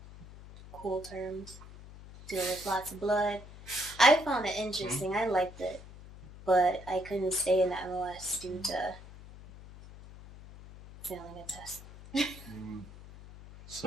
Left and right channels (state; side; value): noise; left; hum, 17 dB below the sound